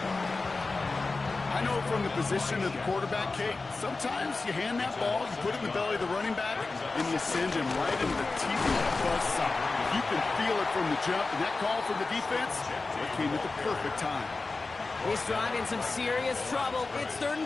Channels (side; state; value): right; quieter; 3.7 dB